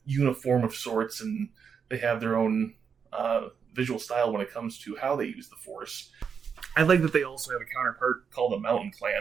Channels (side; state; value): left; quieter; 6.6 dB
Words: uniform of sorts, and they have their own visual style when it comes to how they use the Force. I like that they also have a counterpart called the Mountain